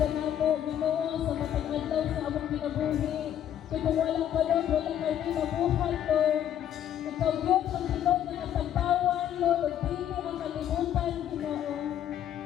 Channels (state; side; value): quieter; right; 10.5 dB